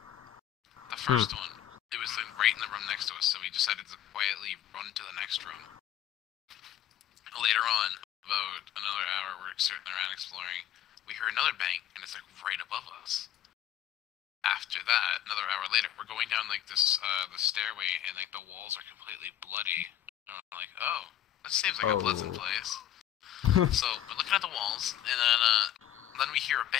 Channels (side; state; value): right; quieter; 11.4 dB